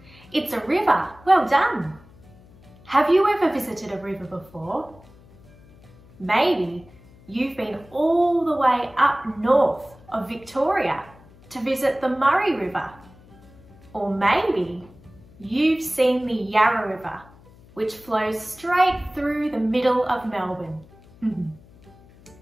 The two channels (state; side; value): noise; left; hum, 25 dB below the sound